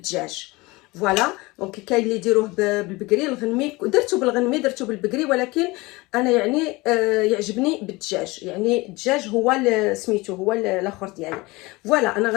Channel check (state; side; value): quieter; right; 22.8 dB